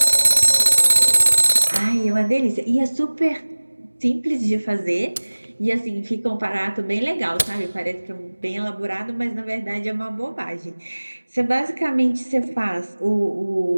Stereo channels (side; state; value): both; inverted; correlation -1.00